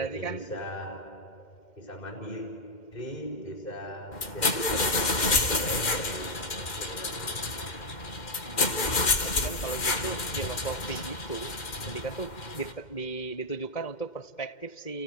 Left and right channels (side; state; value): right; late; 2.1 ms